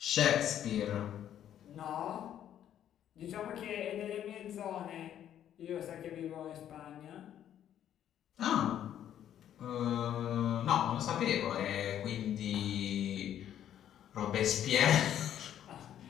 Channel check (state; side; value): quieter; right; 10.6 dB